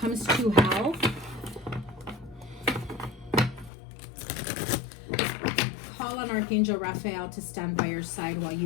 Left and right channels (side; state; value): right; drops out; at 3.7 s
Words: to health. Call on Archangel Raphael to stand by your side while